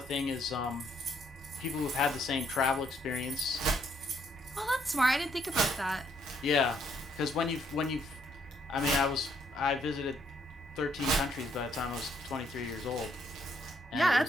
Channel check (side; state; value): both; normal; correlation 0.71